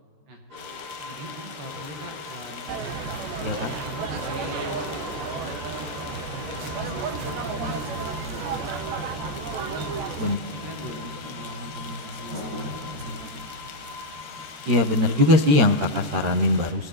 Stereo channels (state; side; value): late; left; 13 ms